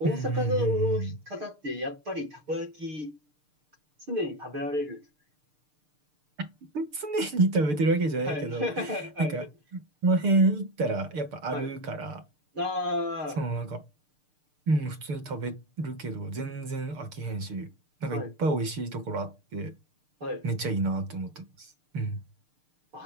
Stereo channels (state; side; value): late; left; 6.6 ms